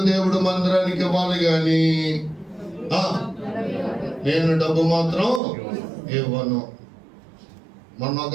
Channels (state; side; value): drops out; left; at 5.4 s